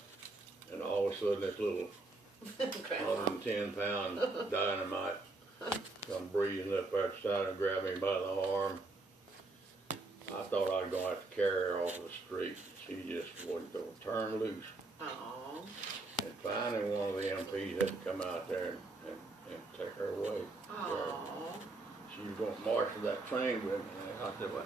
And all of a sudden this little 110-pound dynamite come breezing up out the side and grabbed me by the arm. I thought I was going to have to carry her off the street. She just wasn't going to turn loose. Aww. And finally one of the MPs had to come out there and take her away. Aww. She was going to march to that train with me. And I said, well,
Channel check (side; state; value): left; quieter; 3.3 dB